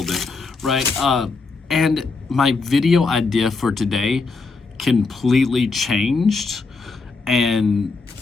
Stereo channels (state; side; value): quieter; right; 4.1 dB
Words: it, right? And my video idea for today completely changed. And